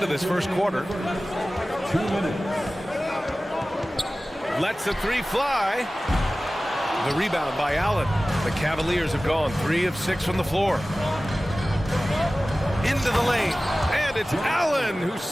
this first quarter. 2 minutes. Lets the three fly. The rebound by Allen. The Cavaliers have gone 3 of 6 from the floor. Into the lane. And it's Allen who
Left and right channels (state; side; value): normal; both; correlation 0.97